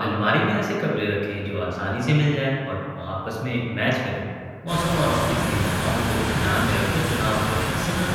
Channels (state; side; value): identical; both; correlation 1.00